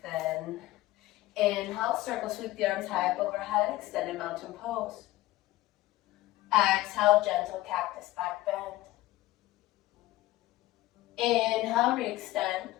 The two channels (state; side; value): quieter; right; 17.0 dB